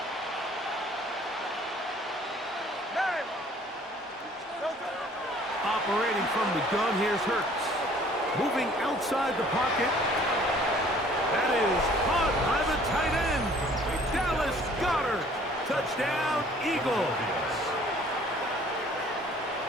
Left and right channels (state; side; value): normal; both; correlation 0.55